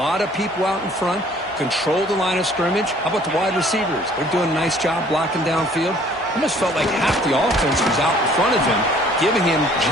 of people out in front. Control the line of scrimmage. How about the wide receivers? They're doing a nice job blocking downfield. Almost felt like half the offense was out in front of him, giving him a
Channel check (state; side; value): normal; both; correlation 0.56